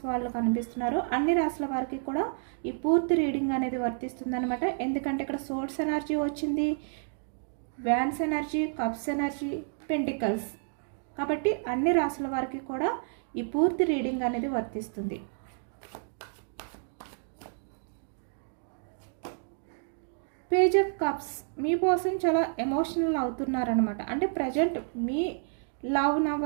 వాళ్ళు కనిపిస్తున్నారు. అన్ని రాశుల వారికి కూడా ఈ పూర్తి రీడింగ్ అనేది వర్తిస్తుంది అనమాట. ఎందుకంటే ఇక్కడ సోర్స్ ఎనర్జీ వచ్చింది, wands energy, cups energy, pentacles, కాబట్టి అన్ని రాశుల వారికి కూడా ఈ పూర్తి రీడింగ్ అనేది వర్తిస్తుంది. Page of cups, me person చాలా ఎమోషనల్ అవుతున్నారనమాట. అంటే ప్రజెంట్ మీ లవ్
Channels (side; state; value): left; silent; digital silence